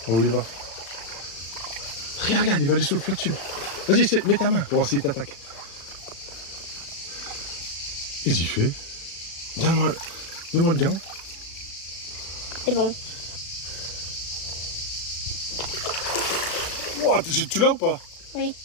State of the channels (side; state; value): right; late; 36 ms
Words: Oh, il va. Regarde, il va aller sous le flat tube. Vas-y, mets ta main pour voir s'il t'attaque. Qu'est-ce qu'il fait? Donne-moi le gant. C'est bon. Wow, tu l'as ou pas? Oui.